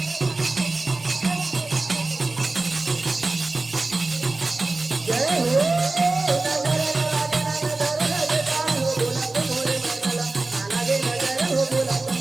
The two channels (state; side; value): quieter; left; 3.3 dB